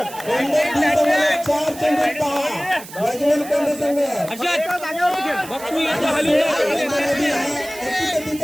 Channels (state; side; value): noise; right; hiss, 15 dB below the sound